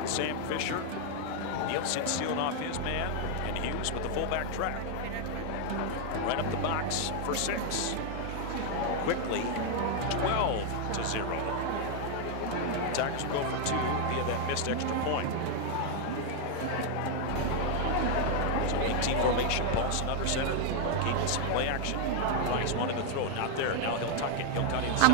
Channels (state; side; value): different; both; correlation 0.00